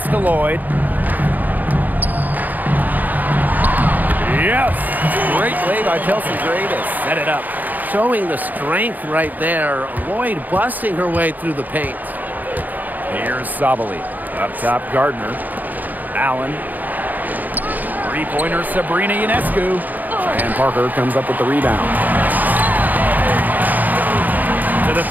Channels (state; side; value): late; left; 0.083 ms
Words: to Lloyd. Yes! Great play by Chelsea Gray to set it up. Showing the strength right there. Lloyd busting her way through the paint. Here's Sabali. Up top, Gardner. Allen. Three-pointer, Sabrina Ionescu. And Parker comes up with the rebound. To the